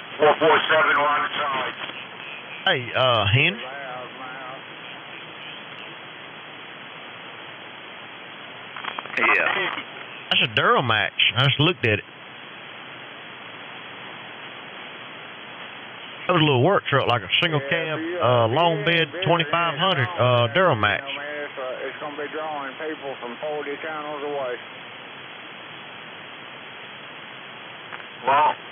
447 on the side. Hey, Henry. Yeah. That's a Duramax. I just looked at it. That was a little work truck, like a single cab, long bed, 2500 Duramax. It's going to be drawing people from 40 channels away. Well,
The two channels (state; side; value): identical; both; correlation 1.00